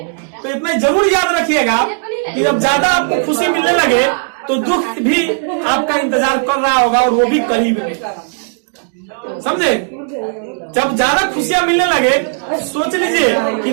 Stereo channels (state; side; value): silent; left; 60 dB below the other